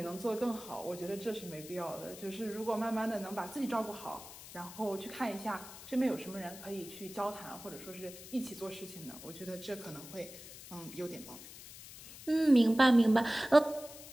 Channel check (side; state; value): left; noise; hiss, 15 dB below the sound